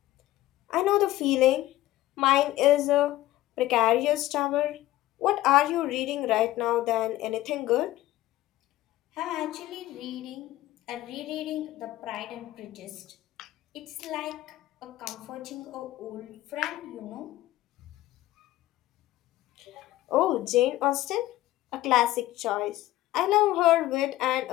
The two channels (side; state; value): right; quieter; 15.7 dB